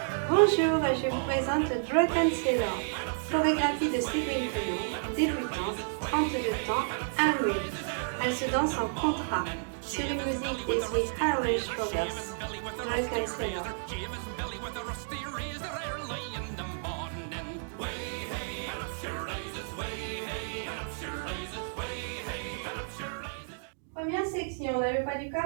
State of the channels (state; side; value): silent; left; digital silence